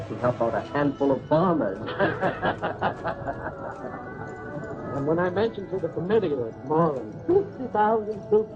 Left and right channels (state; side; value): identical; both; correlation 1.00